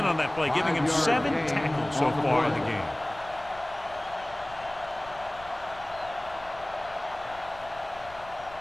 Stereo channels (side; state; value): left; noise; rumble, 20 dB below the sound